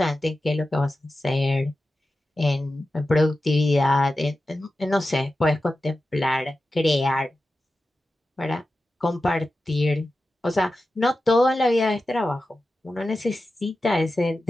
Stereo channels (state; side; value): normal; both; correlation 0.93